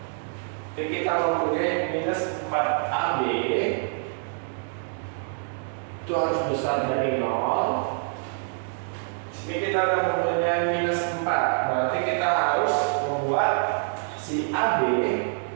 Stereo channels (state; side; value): silent; left; 61 dB below the other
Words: jadi kita mempunyai minus 4AB. itu harus besar dari 0. Sini kita akan mempunyai minus 4. Berarti kita harus membuat si AB